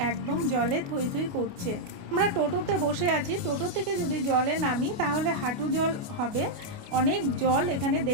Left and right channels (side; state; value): left; late; 28 ms